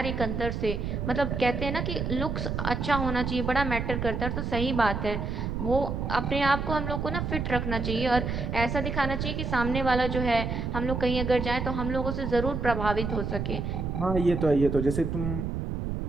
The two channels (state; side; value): noise; right; rumble, 2 dB below the sound